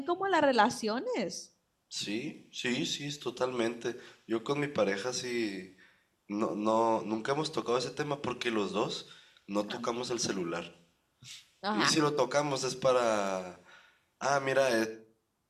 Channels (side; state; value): both; identical; correlation 1.00